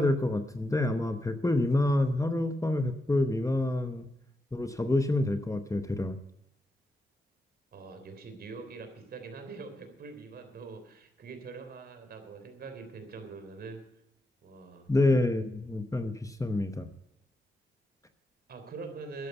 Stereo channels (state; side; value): normal; both; correlation 0.86